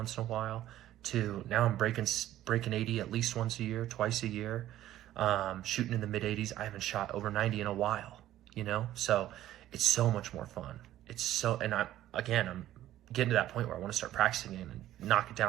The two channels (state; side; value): quieter; left; 13.4 dB